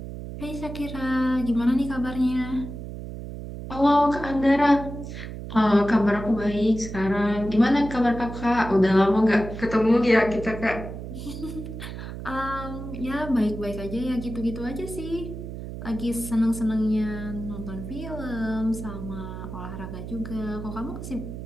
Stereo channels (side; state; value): right; noise; hum, 9 dB below the sound